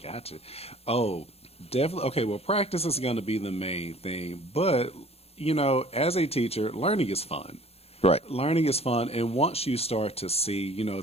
Gotcha. Oh, definitely. Okay, well, practice is going to be the main thing, but as a teacher, learning is fun. Right. Learning is fun, and once you start to see,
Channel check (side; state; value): right; late; 0.29 ms